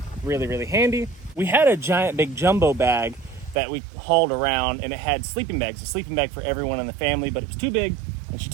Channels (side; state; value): left; drops out; at 3.6 s